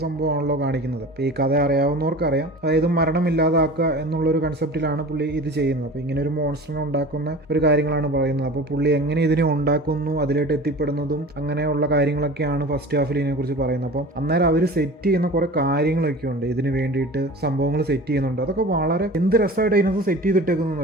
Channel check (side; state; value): both; normal; correlation 0.38